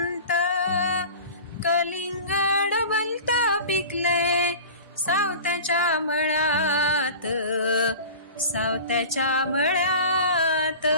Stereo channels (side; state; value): both; inverted; correlation -0.37